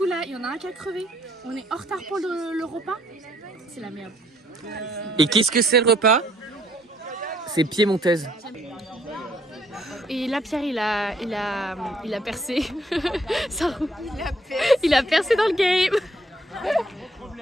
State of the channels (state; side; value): normal; both; correlation 0.66